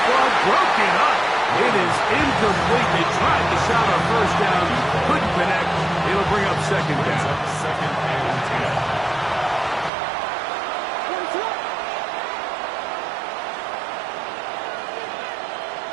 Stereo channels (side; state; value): left; drops out; at 9.9 s